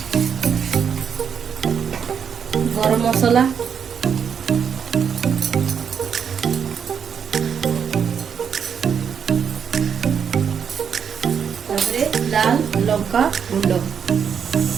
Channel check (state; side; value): quieter; left; 7.3 dB